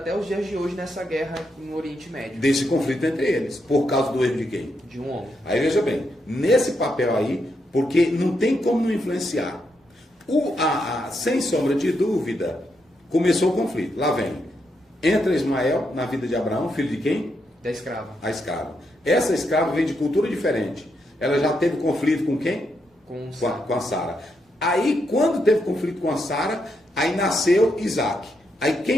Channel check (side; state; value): both; normal; correlation 0.81